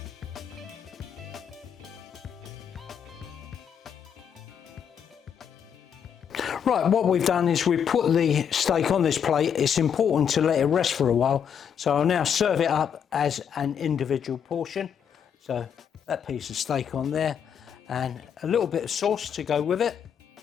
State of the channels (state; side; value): quieter; right; 8.0 dB